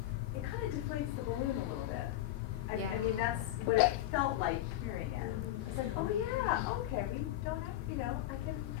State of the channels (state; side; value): quieter; right; 14.1 dB